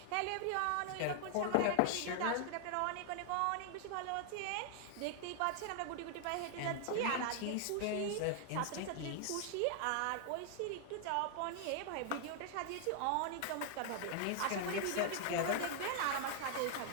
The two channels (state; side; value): different; both; correlation 0.00